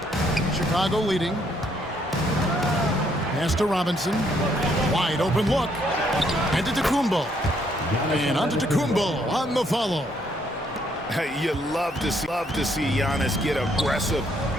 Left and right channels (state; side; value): normal; both; correlation 0.70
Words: Chicago leading. Pass to Robinson. Wide open look. And to Tacumbo. And on to Tacumbo on the follow. You love to see Giannis get aggressive